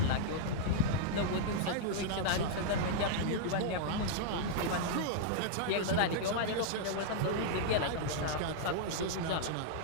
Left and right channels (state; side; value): different; both; correlation -0.01